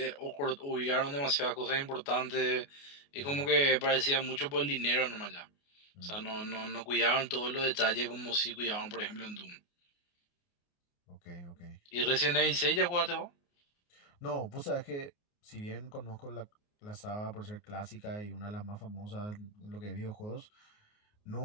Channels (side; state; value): right; late; 29 ms